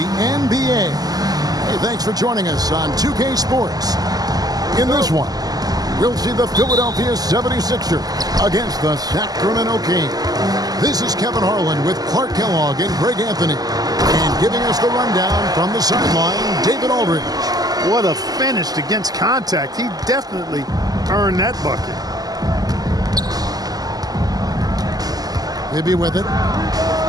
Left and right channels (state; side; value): late; left; 0.18 ms